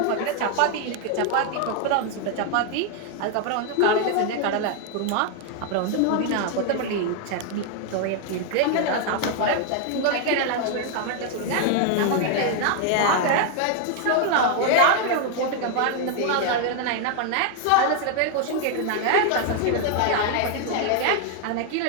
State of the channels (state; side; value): different; both; correlation 0.00